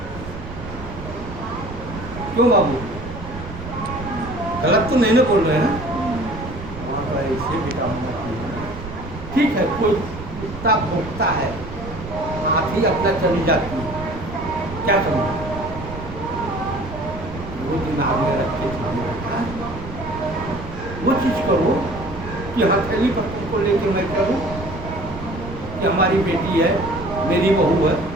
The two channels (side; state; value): right; noise; rumble, 11 dB below the sound